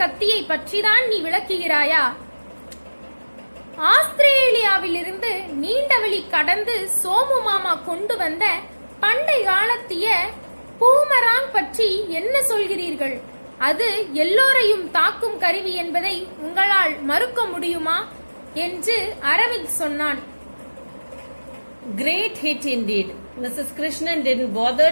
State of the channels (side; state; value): both; inverted; correlation -1.00